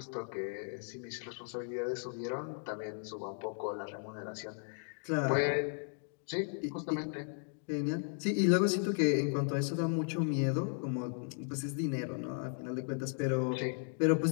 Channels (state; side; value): silent; right; 54 dB below the other